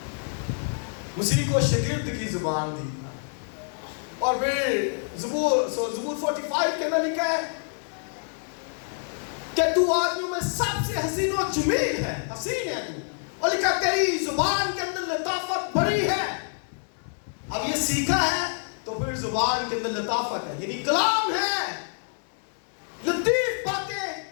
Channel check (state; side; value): silent; right; 60 dB below the other